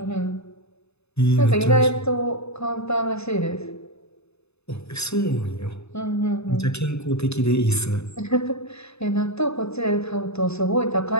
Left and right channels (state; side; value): late; right; 0.80 ms